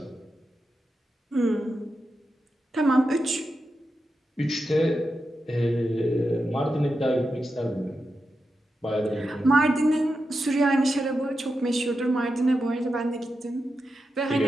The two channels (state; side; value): normal; both; correlation 0.89